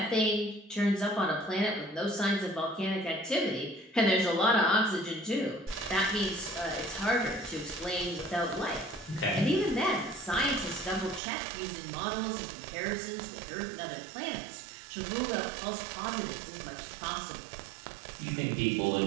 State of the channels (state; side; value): drops out; left; at 11.2 s